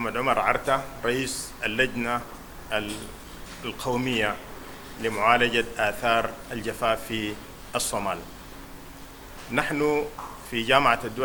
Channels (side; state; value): both; identical; correlation 1.00